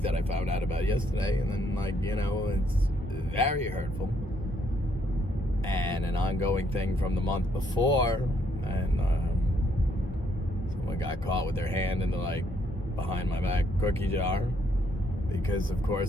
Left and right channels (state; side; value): normal; both; correlation 0.71